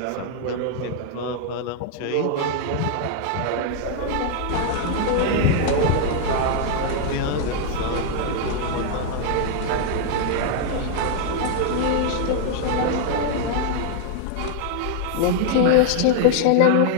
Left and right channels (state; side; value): different; both; correlation 0.00